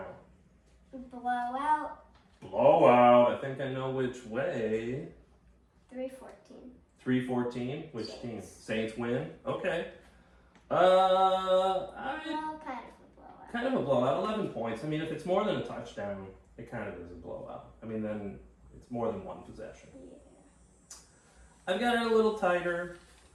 Blowout. Blowout. I think I know which way. 3-14. 3-14. Which Saints. team? Saints win. Okay. Well, kind of a blowout. Kind of a blowout. 11 points. I mean, if it's more than a touchdown, it kind of is a blowout. I mean, then it's more than 1 possession. Yeah. I've got it a little tighter.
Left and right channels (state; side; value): identical; both; correlation 1.00